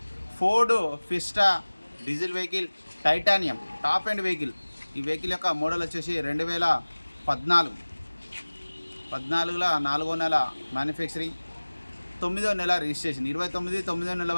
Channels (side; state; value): both; inverted; correlation -1.00